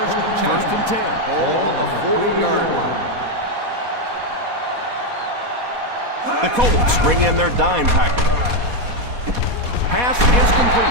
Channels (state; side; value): late; left; 4.1 ms